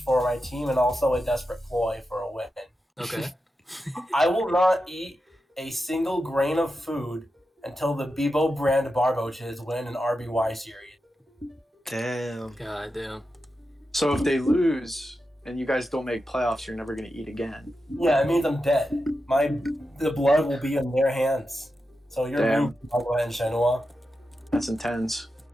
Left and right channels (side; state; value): both; normal; correlation 0.89